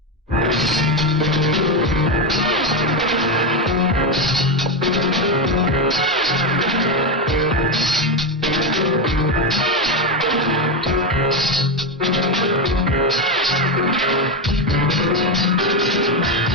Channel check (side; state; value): both; normal; correlation 0.10